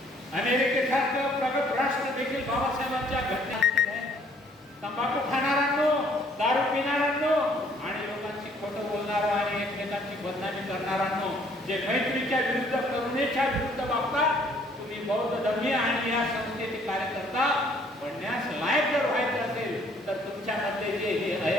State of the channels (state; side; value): normal; both; correlation 0.62